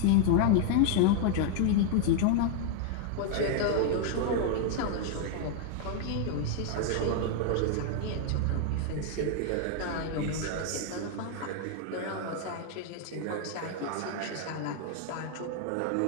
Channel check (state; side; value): different; both; correlation 0.00